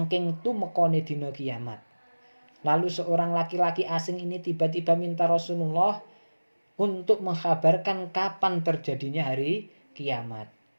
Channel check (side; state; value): both; inverted; correlation -1.00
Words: tumekone dina kiamat. Lalu seorang laki-laki asing ini tiba-tiba minta Rasulullah untuk mengkabarkan kapan terjadinya hari kiamat.